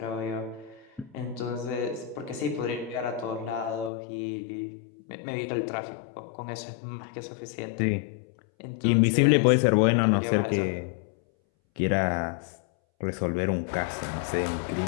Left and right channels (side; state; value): right; drops out; at 3.9 s